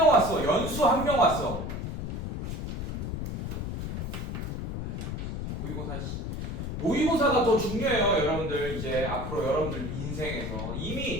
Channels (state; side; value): noise; left; rumble, 4 dB below the sound